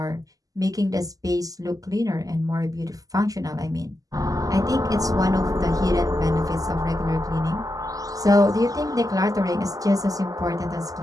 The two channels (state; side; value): late; left; 0.17 ms